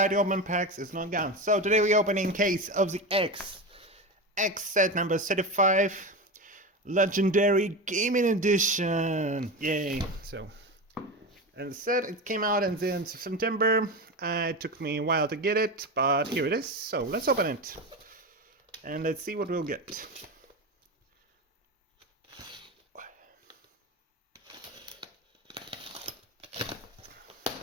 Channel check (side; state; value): both; normal; correlation 0.22